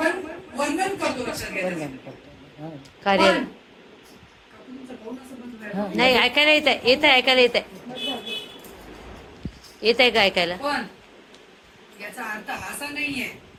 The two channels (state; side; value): identical; both; correlation 1.00